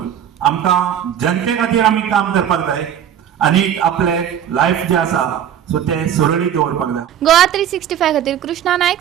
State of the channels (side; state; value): left; quieter; 9.7 dB